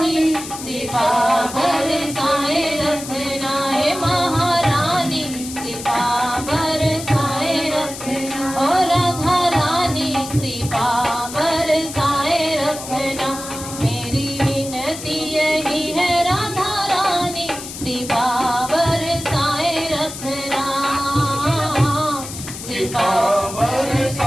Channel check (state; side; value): noise; left; hiss, 10 dB below the sound